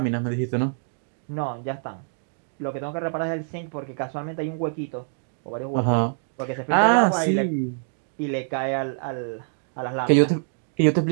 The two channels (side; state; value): left; silent; digital silence